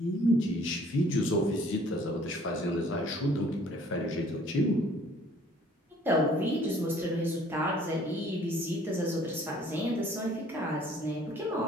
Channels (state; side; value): normal; both; correlation 0.56